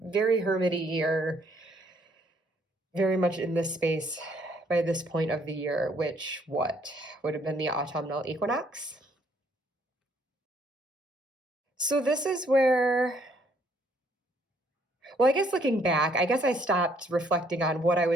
hermity year, very much in this space by this point of the year, which what would have been the autumnal equinox. So this is where, well, I guess looking back, I guess I stopped reflecting on what I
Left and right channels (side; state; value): both; normal; correlation 0.66